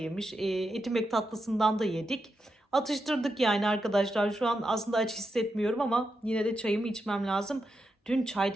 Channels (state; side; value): normal; both; correlation 0.86